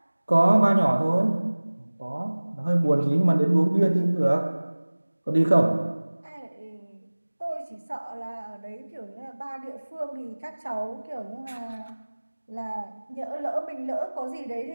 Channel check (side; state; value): both; inverted; correlation -1.00